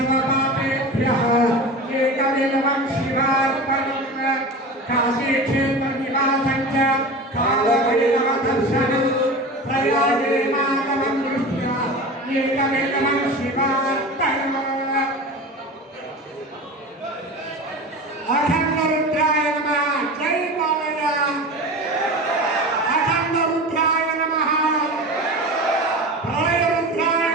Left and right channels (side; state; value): both; normal; correlation 0.31